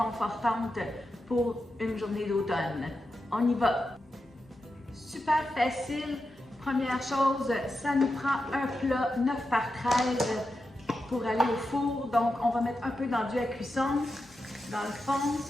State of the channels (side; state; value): both; normal; correlation 0.89